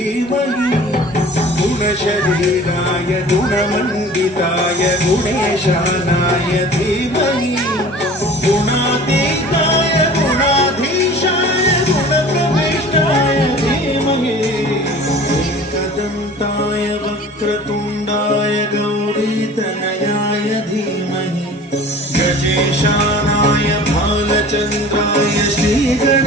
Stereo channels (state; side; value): normal; both; correlation 0.43